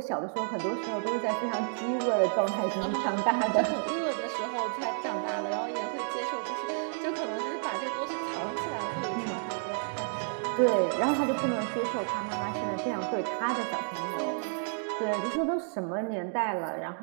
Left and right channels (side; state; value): left; silent; digital silence